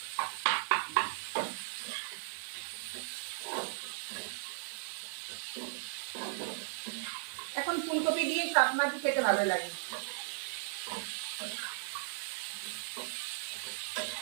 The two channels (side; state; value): left; silent; 53 dB below the other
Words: এখন ফুলকপি দিয়ে সব মাছই খেতে ভালো লাগে,